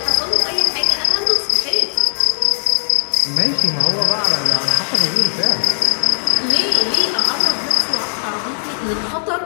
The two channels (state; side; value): silent; right; 68 dB below the other